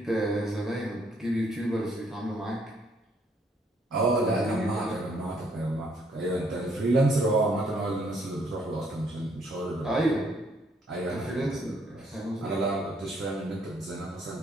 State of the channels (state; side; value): normal; both; correlation 0.68